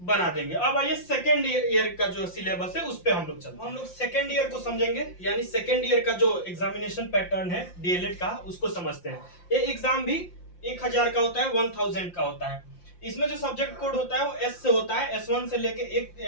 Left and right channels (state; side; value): late; right; 5.7 ms